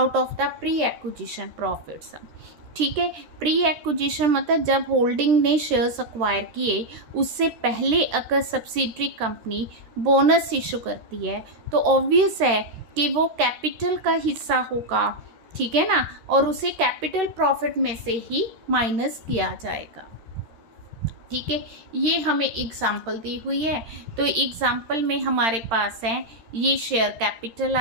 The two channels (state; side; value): late; left; 13 ms